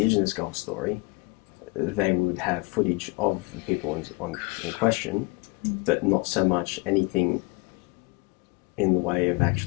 golf story, they would have footage of the people in question, but not so much anything in the way of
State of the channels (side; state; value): right; quieter; 27.6 dB